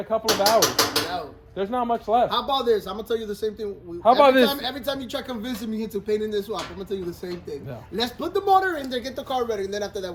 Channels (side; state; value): both; identical; correlation 1.00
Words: couple of hours. No. There's not much left. How about this? I'm gonna tell you the same thing. How about every this? Every time you try convincing me into painting this swap, I'm gonna tell you the same thing. No. Let's put the motor in there, get the car ready, and then after that